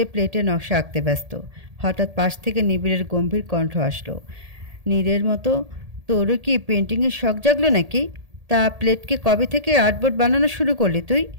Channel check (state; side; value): late; left; 1.8 ms